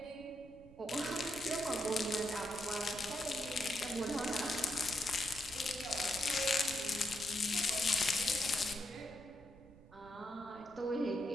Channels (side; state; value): right; noise; rumble, 22 dB below the sound